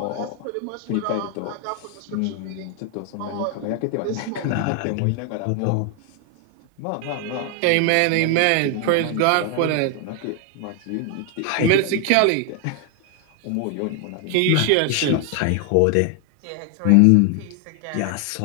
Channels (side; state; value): both; different; correlation 0.00